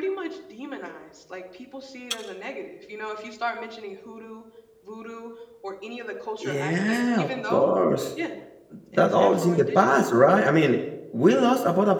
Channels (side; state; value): both; identical; correlation 1.00